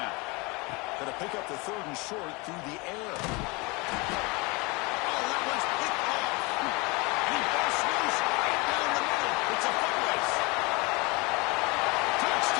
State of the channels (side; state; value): right; quieter; 26.6 dB